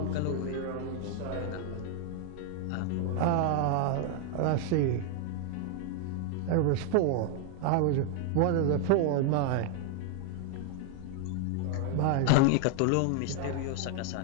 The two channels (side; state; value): both; different; correlation 0.00